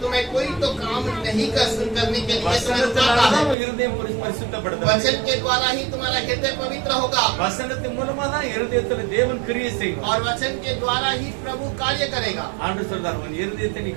तुम्हें कोई तो काम नहीं कर करने के लिए तुम्हें रुकाता है। வசனத்தினால இருதயம் பரிசுத்தப்படுது. वचन के द्वारा ही तुम्हारा हृदय पवित्र होगा வசனத்தின் மூலமா தான் இருதயத்துல தேவன் கிரியை செய்வார். और वचन के द्वारा ही प्रभु कार्य करेगा। ஆண்டவர் சொல்றார், உன் இருதயத்தை நீ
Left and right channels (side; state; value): left; drops out; at 3.6 s